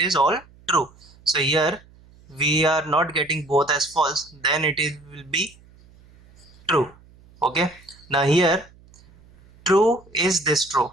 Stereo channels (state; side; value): noise; right; hum, 27 dB below the sound